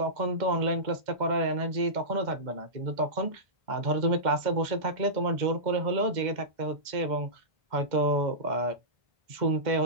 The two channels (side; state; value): left; late; 2.0 ms